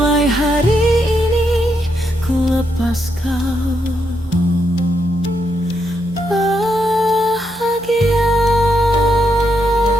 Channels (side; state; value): left; noise; hum, 24 dB below the sound